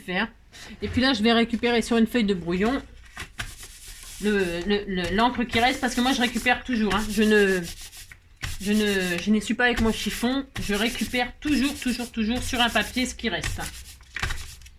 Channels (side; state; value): both; identical; correlation 1.00